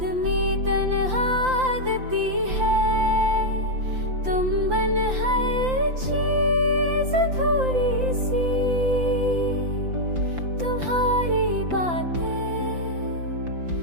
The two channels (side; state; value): left; late; 5.8 ms